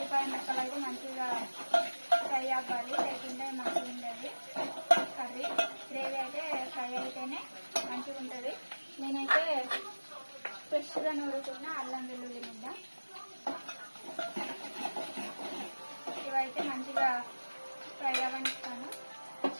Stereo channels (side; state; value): both; inverted; correlation -1.00